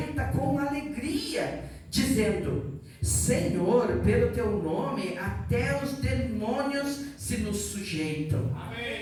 com alegria, dizendo: Senhor, pelo teu nome até os demônios se nos sujeitam.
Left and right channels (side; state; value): both; identical; correlation 1.00